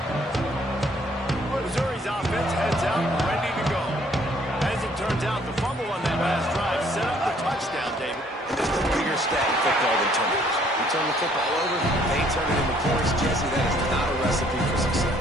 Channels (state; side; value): normal; both; correlation 0.62